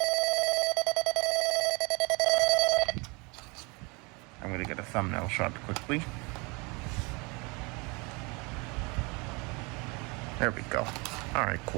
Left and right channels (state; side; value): quieter; left; 28.6 dB